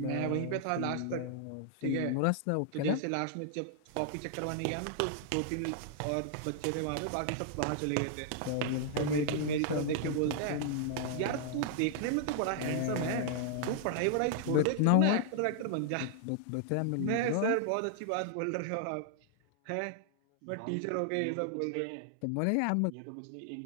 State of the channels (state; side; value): different; both; correlation -0.01